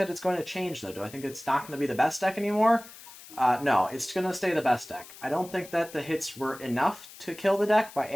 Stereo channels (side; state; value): left; noise; hiss, 18 dB below the sound